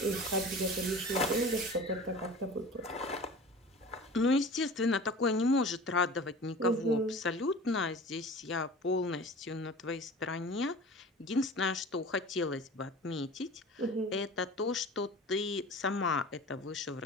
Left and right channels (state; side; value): normal; both; correlation 0.39